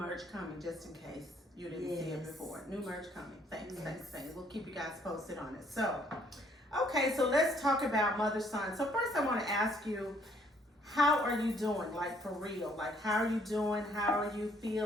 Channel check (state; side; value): normal; both; correlation 0.65